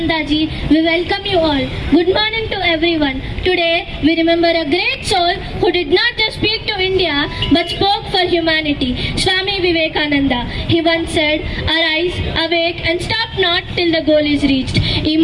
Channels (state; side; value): identical; both; correlation 1.00